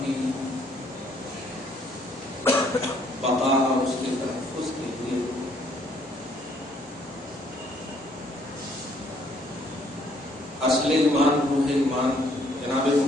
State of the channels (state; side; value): normal; both; correlation 0.65